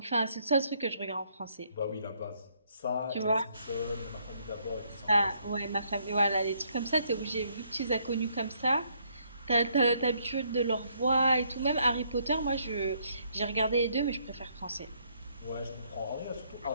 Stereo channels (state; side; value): inverted; both; correlation -0.70